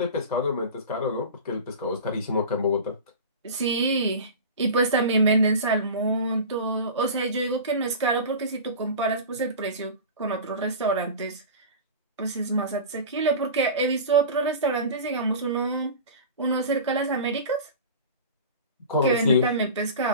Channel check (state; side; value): inverted; both; correlation -0.32